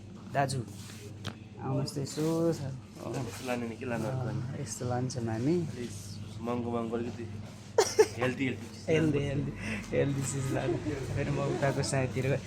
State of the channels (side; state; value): both; identical; correlation 1.00